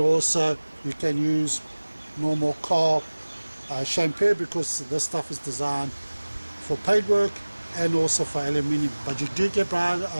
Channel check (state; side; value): inverted; both; correlation -1.00